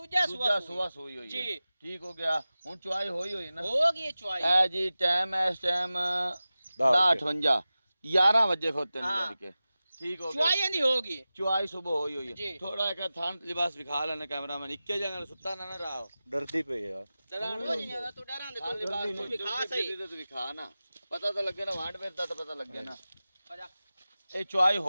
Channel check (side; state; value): both; inverted; correlation -0.95